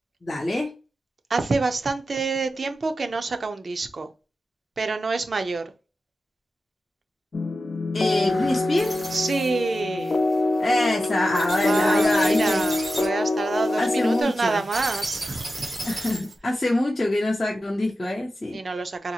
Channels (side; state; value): both; normal; correlation 0.92